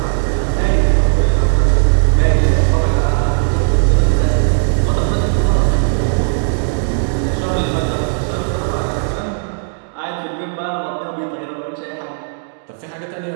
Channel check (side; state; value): left; silent; digital silence